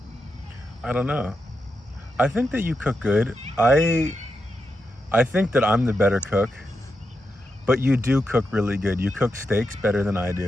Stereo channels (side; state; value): both; normal; correlation 0.86